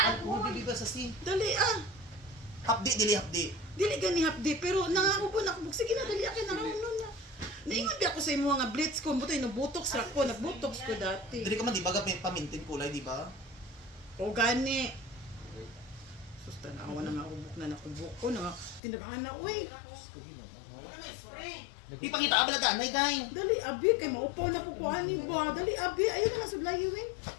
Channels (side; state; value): right; drops out; at 18.8 s